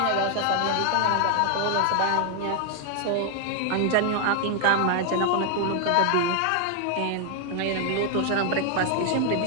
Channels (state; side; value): different; both; correlation 0.00